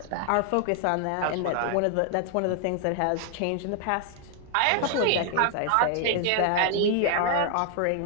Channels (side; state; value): both; different; correlation 0.00